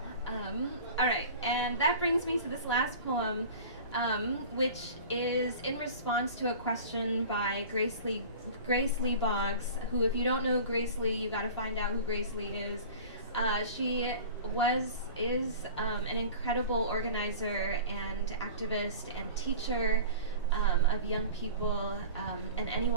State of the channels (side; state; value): both; inverted; correlation -0.39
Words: All right, and that brings me to this last poem, which is in response to a question by Grace Lee Boggs, who, if you don't know Grace Lee, you got to find out who Grace Lee is. She is an incredible organizer and activist and teacher of young people and